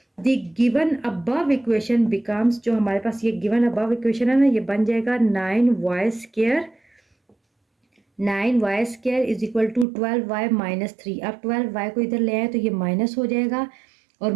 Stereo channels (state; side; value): drops out; left; at 9.9 s